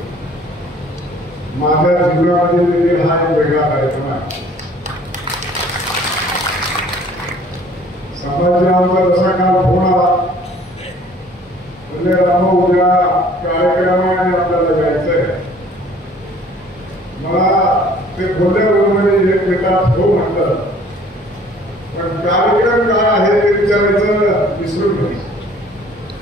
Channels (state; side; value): normal; both; correlation 0.54